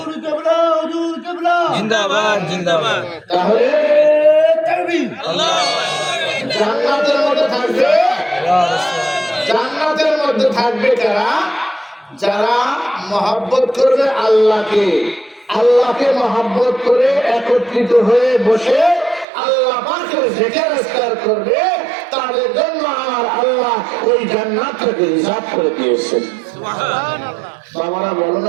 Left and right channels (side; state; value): left; drops out; at 19.2 s